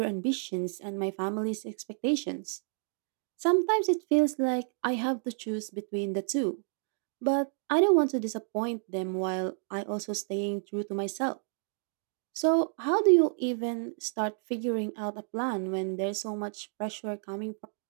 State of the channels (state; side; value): silent; left; digital silence